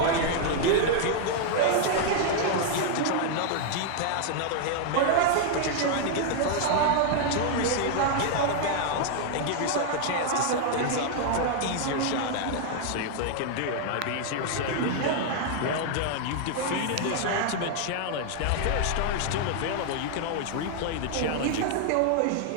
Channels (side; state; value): both; different; correlation 0.00